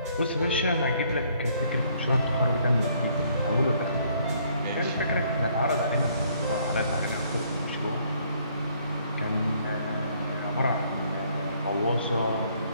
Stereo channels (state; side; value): inverted; both; correlation -0.65